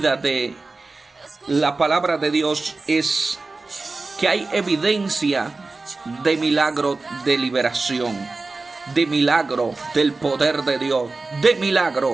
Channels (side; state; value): left; quieter; 3.6 dB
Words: de la palabra de Dios es que hay evidencia de milagro de liberación, de milagro del poder de Dios, de